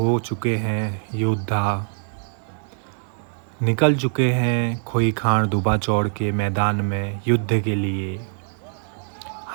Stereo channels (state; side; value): silent; left; 63 dB below the other